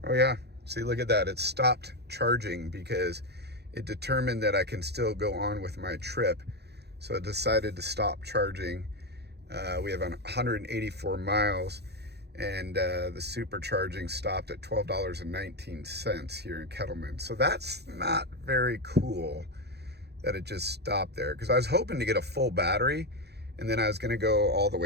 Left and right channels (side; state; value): left; late; 0.48 ms